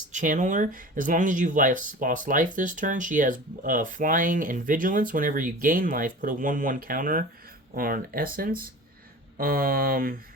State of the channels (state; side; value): normal; both; correlation 0.38